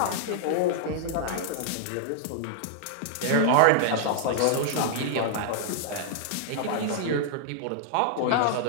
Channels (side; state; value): both; different; correlation -0.01